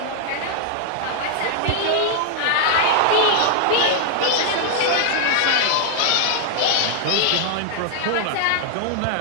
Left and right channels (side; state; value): both; different; correlation -0.01